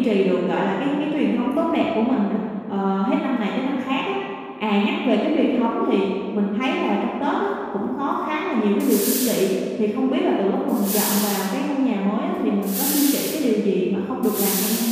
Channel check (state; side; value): identical; both; correlation 1.00